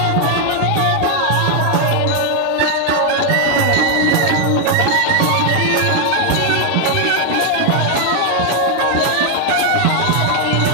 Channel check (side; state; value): both; different; correlation 0.01